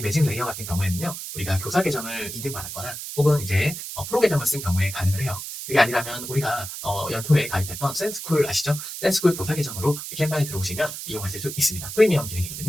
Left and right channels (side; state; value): right; noise; hiss, 8 dB below the sound